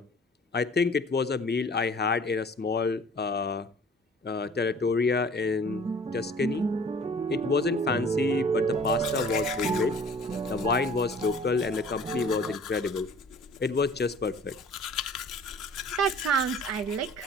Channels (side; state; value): both; normal; correlation 0.49